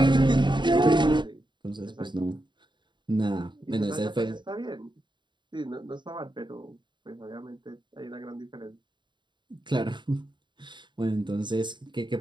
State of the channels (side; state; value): left; late; 0.22 ms